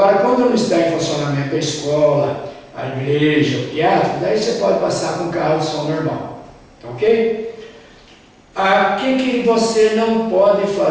quando não está em funcionamento a escola, a igreja, o teatro, daí você pode passar com carro de som normal. Tá ok? O que você não pode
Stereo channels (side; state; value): both; identical; correlation 1.00